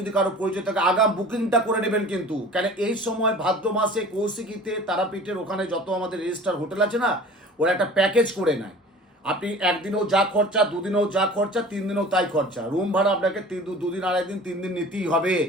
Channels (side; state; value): both; normal; correlation 0.43